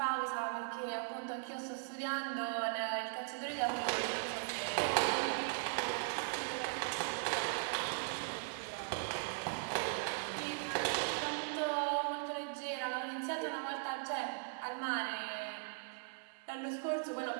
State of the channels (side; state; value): left; silent; digital silence